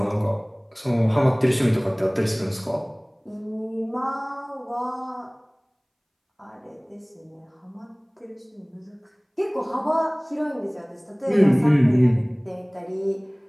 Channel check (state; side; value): identical; both; correlation 1.00